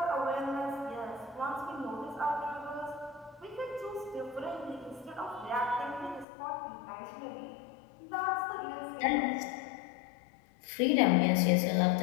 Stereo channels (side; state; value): right; drops out; at 6.2 s